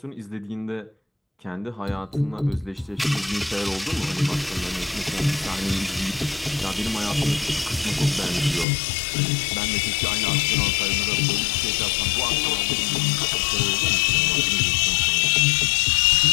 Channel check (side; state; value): right; drops out; at 8.7 s